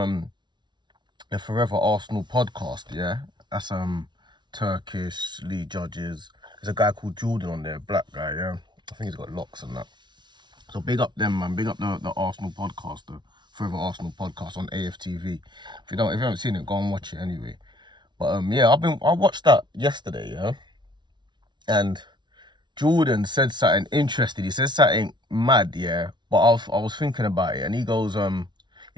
the Forever Arsenal podcast. Yeah, that's Turkish league judges. There's a guy called Jordan on there, black guy. Yeah, I think he's got locks and that. So big up them, man. Big up the Arsenal podcast, the Forever Arsenal podcast on AFTV. If you haven't seen it, go and watch it anyway. But yeah, I watched that yesterday, yeah, and Jordan said something interesting. He said something mad, yeah. But I was thinking about it, and he goes,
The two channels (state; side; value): late; left; 0.22 ms